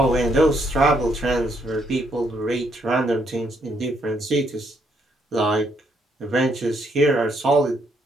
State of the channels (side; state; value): both; normal; correlation 0.73